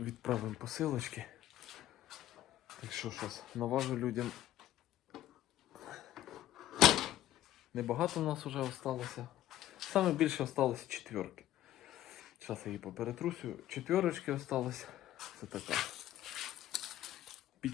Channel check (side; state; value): right; quieter; 13.3 dB